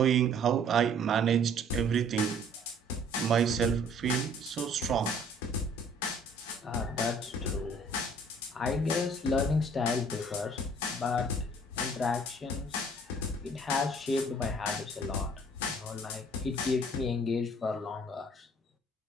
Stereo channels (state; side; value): normal; both; correlation 0.56